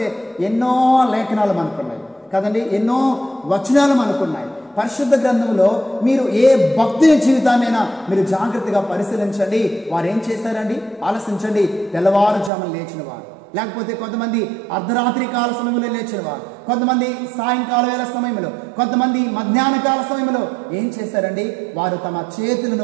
ఎన్నో లేఖనాలు మనకున్నాయి కదండి, ఎన్నో వచనాలు మనకున్నాయి. పరిశుద్ధ గ్రంథంలో మీరు ఏ భక్తుని జీవితాన్నైనా మీరు జాగ్రత్తగా పరిశీలించండి. వారు ఏం చేశారండి? ఆలోచించండి. తెల్లవారుజామున లేచిన వారు, లేకపోతే కొంతమంది అర్ధరాత్రి కాల సమయంలో లేచిన వారు, కొంతమంది సాయంకాల వేళ సమయంలో, కొంతమంది మధ్యాహ్న కాల సమయంలో ఏం చేశారండి? వారు తమ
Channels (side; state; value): left; drops out; at 12.5 s